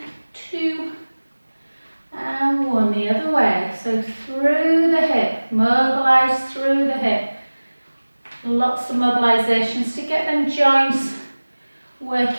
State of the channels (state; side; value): inverted; both; correlation -1.00